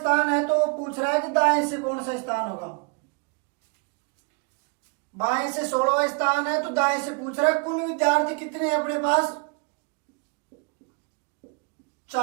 है तो पूछ रहा है कि दाएं से कौन सा स्थान होगा। बाएं से 16वां स्थान है तो दाएं से पूछ रहा है कुल विद्यार्थी कितने हैं अपने पास?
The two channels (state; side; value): quieter; left; 35.6 dB